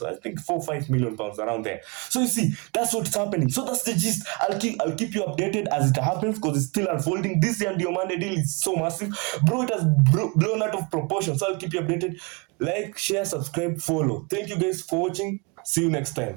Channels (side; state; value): left; quieter; 30.4 dB